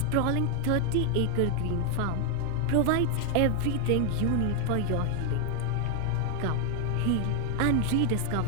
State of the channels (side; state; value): both; different; correlation 0.00